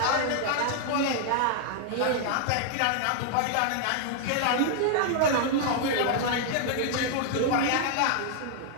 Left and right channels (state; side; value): different; both; correlation 0.00